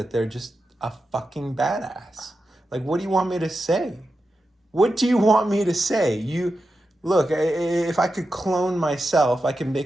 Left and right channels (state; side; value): normal; both; correlation 0.90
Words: they're just a fucking badass. Like, what do you want me to say? What do you want me to say? Look, if I could clone myself, I can